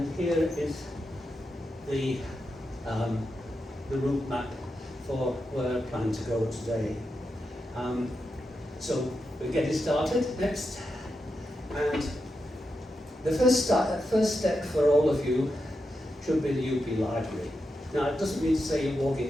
here is the route map for where I plan to go today. So we're getting started next, and the first step for all of you should be the UP Library. Now, it doesn't mean to say you're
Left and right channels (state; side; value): normal; both; correlation 0.87